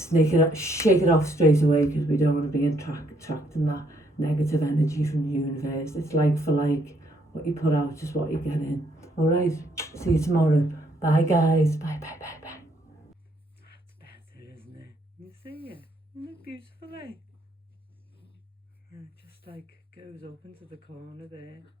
it off straight away, because we don't want to be attracting that negative energy from the universe. It's like for like, what you put out is what you get in. All right, see you tomorrow. Bye guys. Bye. That's better, isn't it? You see it? Isn't it beautiful, eh? And it just like goes up into the corner there.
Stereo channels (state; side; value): normal; both; correlation 0.70